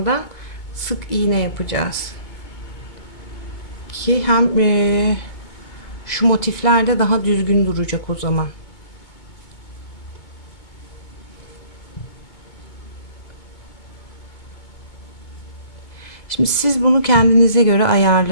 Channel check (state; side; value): late; right; 2.2 ms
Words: sık iğne yapacağız. Ki hem şu motifler de daha düzgün duracak o zaman. Şimdi siz bunu kendinize göre